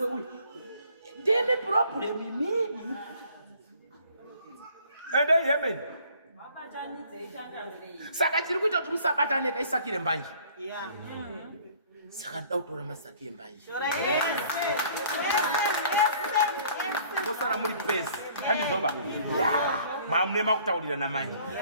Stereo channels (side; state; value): both; inverted; correlation -0.56